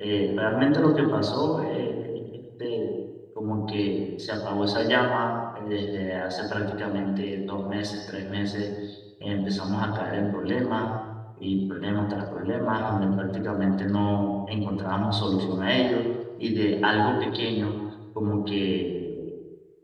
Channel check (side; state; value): both; identical; correlation 1.00